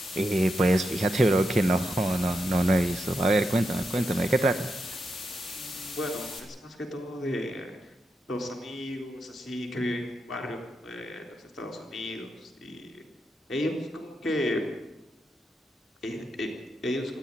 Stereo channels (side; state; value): both; normal; correlation 0.85